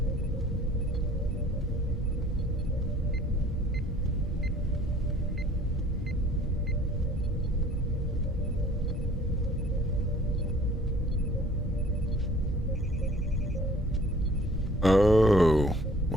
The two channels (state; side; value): normal; both; correlation 0.53